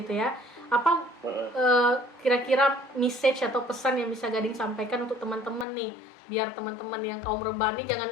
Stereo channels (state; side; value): drops out; right; at 5.7 s